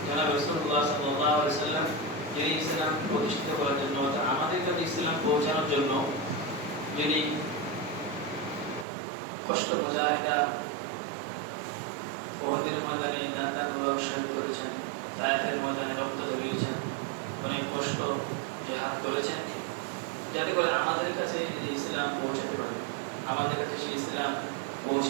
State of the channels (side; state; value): left; drops out; at 8.8 s